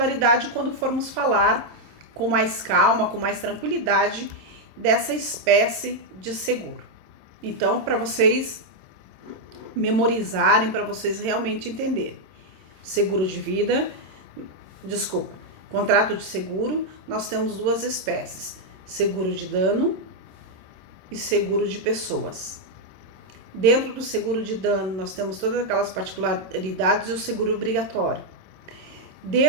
quando formos falar com mais calma, com mais tranquilidade dessa espécie de seguro. Então, para vocês memorizarem, para vocês realmente entenderem. Seguro de vida, contrato de seguro, nós temos duas espécies, seguro de dano e seguro de pessoas. Dentro do seguro de dano, nós temos todas aquelas particularidades e o seguro obrigatório.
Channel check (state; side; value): late; left; 27 ms